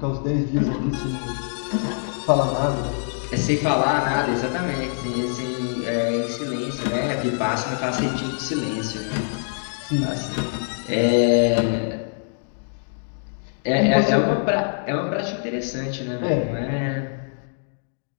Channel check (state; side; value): silent; right; digital silence